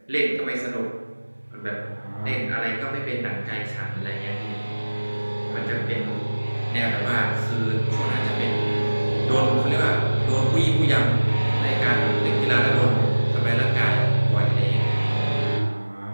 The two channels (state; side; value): inverted; both; correlation -1.00